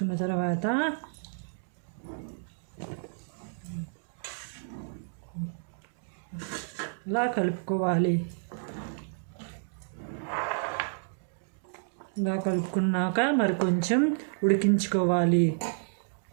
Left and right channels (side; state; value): left; silent; digital silence